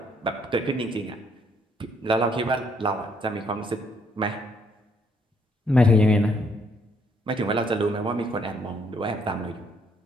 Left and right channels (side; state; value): both; normal; correlation 0.69